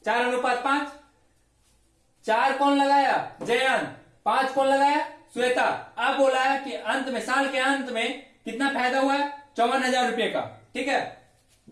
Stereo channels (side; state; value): both; identical; correlation 1.00